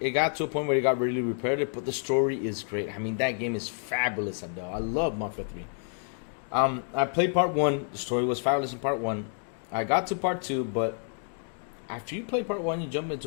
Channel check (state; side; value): silent; right; 57 dB below the other